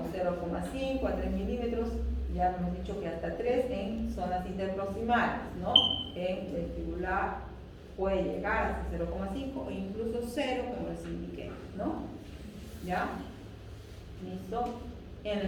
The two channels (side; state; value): both; identical; correlation 1.00